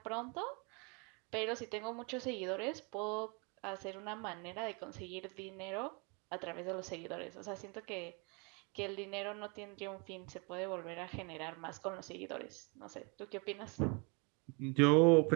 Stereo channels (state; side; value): quieter; left; 31.9 dB